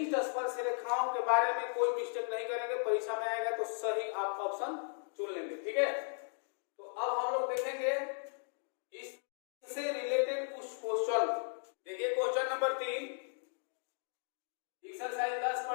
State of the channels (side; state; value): right; silent; digital silence